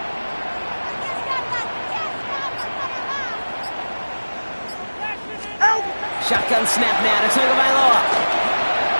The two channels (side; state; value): both; inverted; correlation -1.00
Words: Shotgun snap now to Tagovailoa.